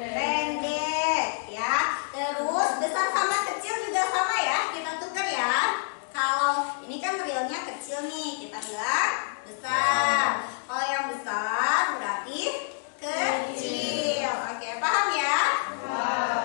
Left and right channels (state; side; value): silent; right; digital silence